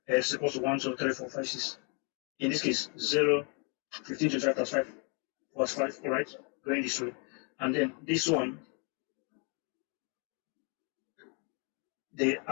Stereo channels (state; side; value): quieter; right; 36.7 dB